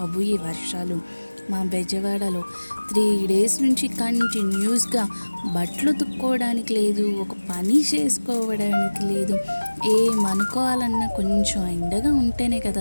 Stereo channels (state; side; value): inverted; both; correlation -1.00